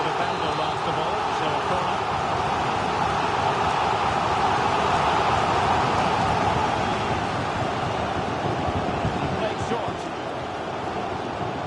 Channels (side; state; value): both; identical; correlation 1.00